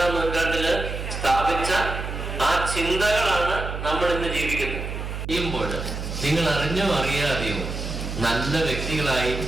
നൂറ്റാണ്ടില് സ്ഥാപിച്ച ആ ചിന്തകളാണ് നമ്മൾ ഇന്ന് ജീവിക്കുന്നത്. ചെയ്യുമ്പോൾ നിങ്ങൾ അറിഞ്ഞോ അറിയാതെയോ നല്ല വ്യക്തികളായി,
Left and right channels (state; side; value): noise; right; hum, 6 dB below the sound